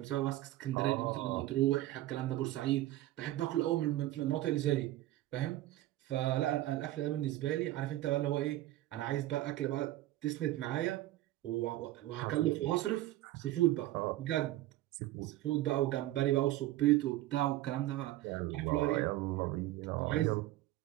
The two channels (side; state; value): left; quieter; 15.6 dB